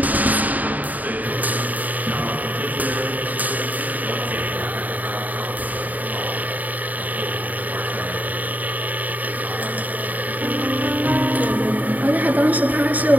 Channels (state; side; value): late; left; 0.079 ms